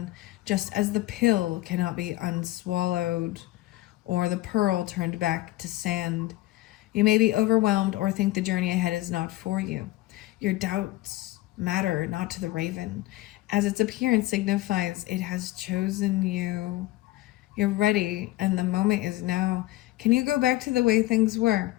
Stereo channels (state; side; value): quieter; right; 17.7 dB